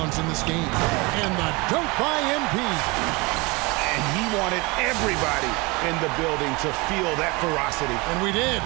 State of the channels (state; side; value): quieter; left; 25.5 dB